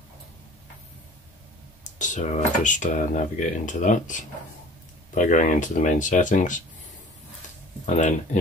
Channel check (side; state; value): both; normal; correlation 0.46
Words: So I just navigate into that by going into the main settings and then